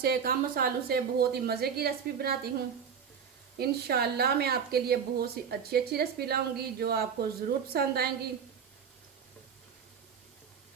कम मसालों से बहुत ही मज़े की रेसिपी बनाती हूँ। इंशाल्लाह मैं आपके लिए बहुत सी अच्छी अच्छी रेसिपी लाऊंगी जो आपको ज़रूर पसंद आएंगी।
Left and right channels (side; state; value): left; quieter; 7.1 dB